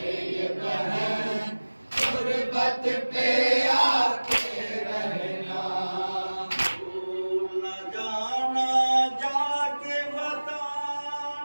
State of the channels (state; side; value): inverted; both; correlation -1.00